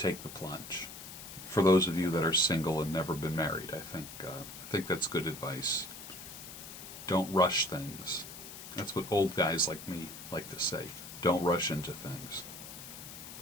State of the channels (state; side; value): noise; left; hiss, 12 dB below the sound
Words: the plunge. For those of you that are single and never been married, I think that's good advice. Don't rush things. That's what old guys like me like to say. Don't rush into things.